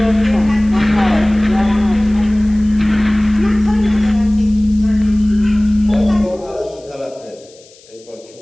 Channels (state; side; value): noise; left; hiss, 26 dB below the sound